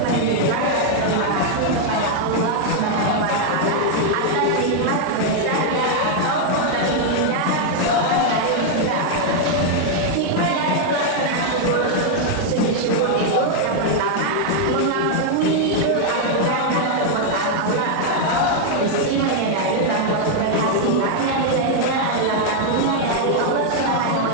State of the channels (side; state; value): both; different; correlation 0.00